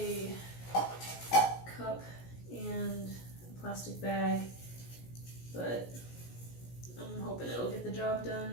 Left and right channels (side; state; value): right; late; 17 ms